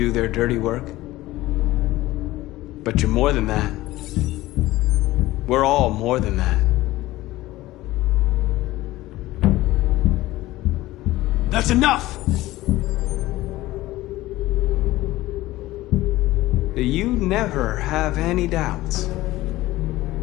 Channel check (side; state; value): right; quieter; 17.3 dB